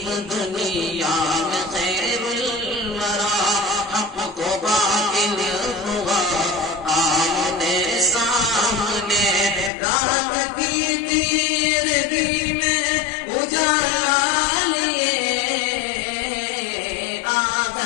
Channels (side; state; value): right; drops out; at 9.7 s